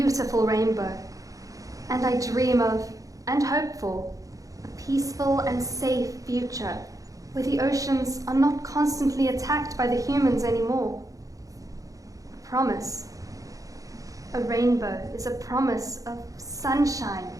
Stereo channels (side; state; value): left; late; 0.17 ms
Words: rainbow. And I dream of, and hope for, a peaceful and safe future where the oceans are not constantly attacked by the humans anymore. A promise. A rainbow is a promise of sunshine